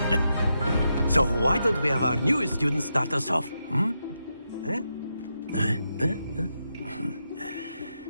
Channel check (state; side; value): inverted; both; correlation -0.85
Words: So why don't we have our newest student start us off?